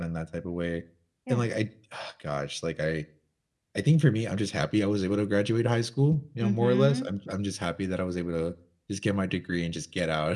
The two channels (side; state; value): both; identical; correlation 1.00